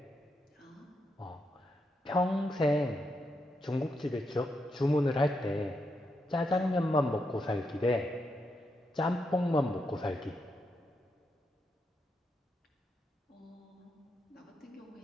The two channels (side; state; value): both; normal; correlation 0.82